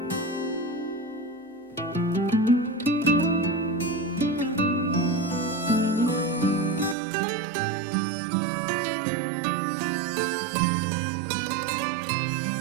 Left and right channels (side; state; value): left; drops out; at 7.0 s